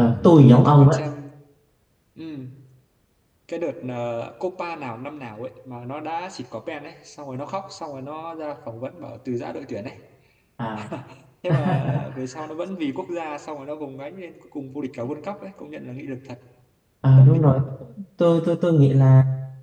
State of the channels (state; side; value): identical; both; correlation 1.00